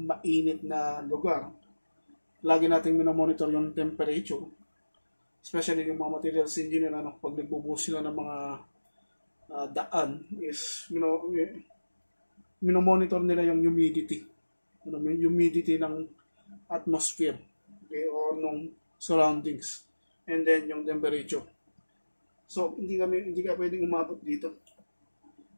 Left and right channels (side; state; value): both; inverted; correlation -1.00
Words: na lugar, lagi nating minomonitor yung temperature. Especially yung mga materials engineer, pag nagbubuhos sila ng mga daan, is minomonitor nila yung humidity. Yung humidity ng atmosphere. Okay, or nung surroundings, and then yung temperature. So hindi ka pwedeng umabot dito.